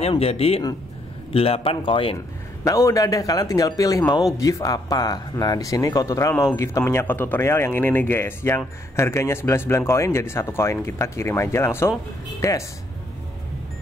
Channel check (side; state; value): both; normal; correlation 0.71